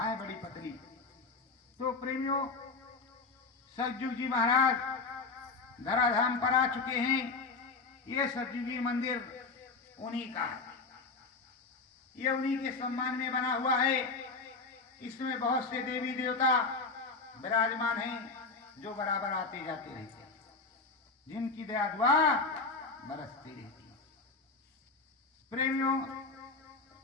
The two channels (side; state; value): right; quieter; 4.0 dB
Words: बड़ी पतली। तो प्रेमियों, सतयुगी महाराज धराधाम पर आ चुके हैं। ये सतयुगी मंदिर उन्हीं का है, ये उन्हीं के सम्मान में बना हुआ है। इसमें बहुत से देवी देवता विराजमान हैं जो बराबर आते जाते रहते हैं, जिनकी दया दुआ बरसती रहती है। प्रेमियों,